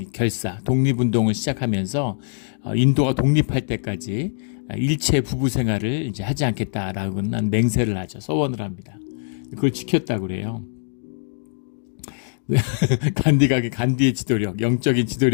독립운동을 시작하면서 인도가 독립할 때까지 일체 부부 생활을 이제 하지 않겠다라고는 맹세를 하죠. 서원을 합니다. 그걸 지켰다고 그래요. 간디의 지도력, 영적인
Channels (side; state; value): right; silent; digital silence